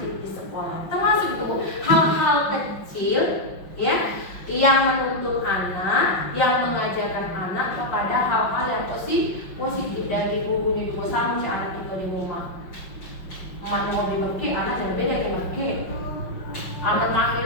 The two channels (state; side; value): late; right; 5.4 ms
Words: di sekolah termasuk itu hal-hal kecil yang menuntut anak, yang mengajarkan anak kepada hal-hal yang positif dari gurunya juga sama si anak itu di rumah. Emaknya mau dimaki, anak jangan beda dimaki. Anak panggil